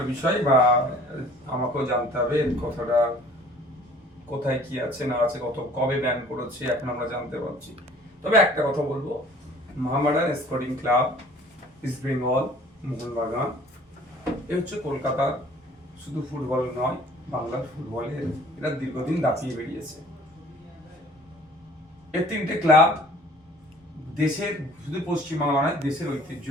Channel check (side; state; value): both; normal; correlation 0.51